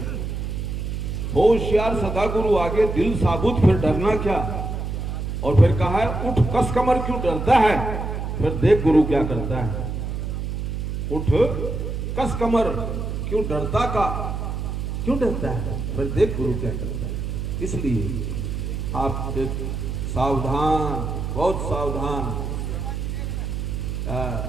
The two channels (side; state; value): right; noise; hum, 4 dB below the sound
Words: हो होशियार सदा गुरु आगे, दिल साबुत फिर डरना क्या। और फिर कहा है, उठ कस कमर क्यों डरता है, फिर देख गुरु क्या करता है। उठ कस कमर क्यों डरता है, फिर देख गुरु क्या करता है। इसलिए आप सावधान, बहुत सावधान।